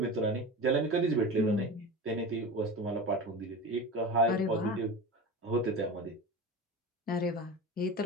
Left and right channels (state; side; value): normal; both; correlation 0.29